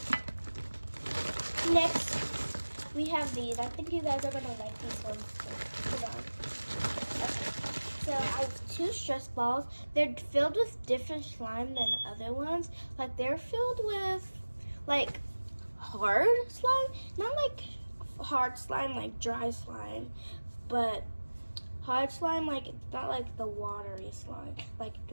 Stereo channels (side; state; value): both; inverted; correlation -1.00